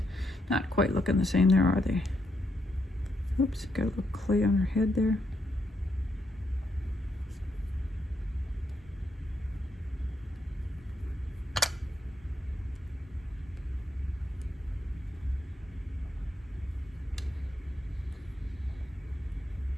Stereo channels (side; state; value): both; normal; correlation 0.79